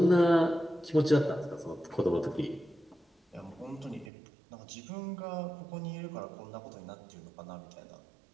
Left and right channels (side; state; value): left; drops out; at 4.1 s